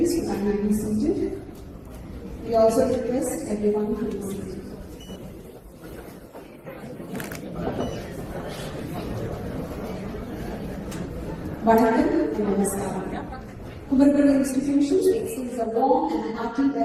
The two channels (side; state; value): both; identical; correlation 1.00